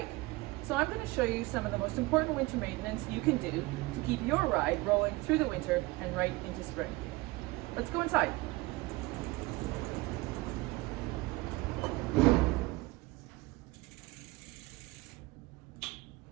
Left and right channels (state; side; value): quieter; left; 21.7 dB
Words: So I'm going to show you some of the most important winter maintenance you can do to keep your ride rolling through the winter and right into spring. Let's go inside.